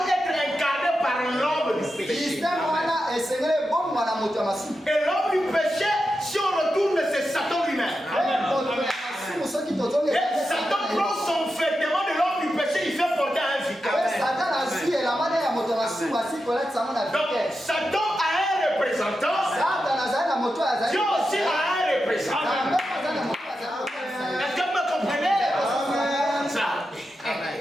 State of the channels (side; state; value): both; normal; correlation 0.89